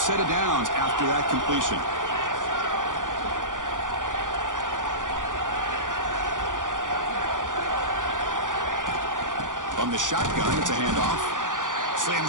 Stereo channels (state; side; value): late; left; 0.88 ms